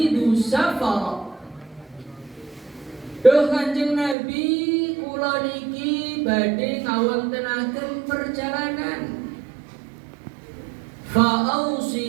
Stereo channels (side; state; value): left; drops out; at 4.2 s